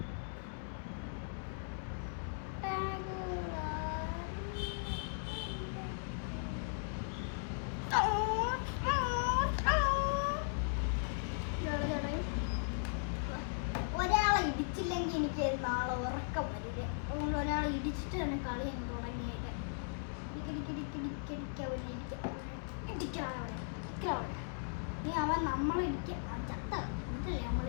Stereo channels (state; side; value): silent; right; digital silence